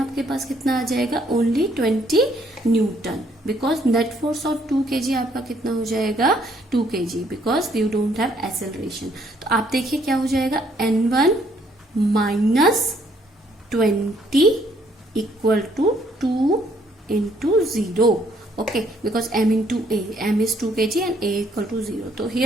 पास कितना आ जाएगा, only 20 newton, because net force of 2 kg आपका कितना हो जाएगा, 2 kg, because you don't have acceleration. तो आप देखिए क्या हो जाएगा, n1 minus 20 equal to 2 into 0, okay, because m into a, m is 2 kg and a equal to 0, तो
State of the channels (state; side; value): normal; both; correlation 0.67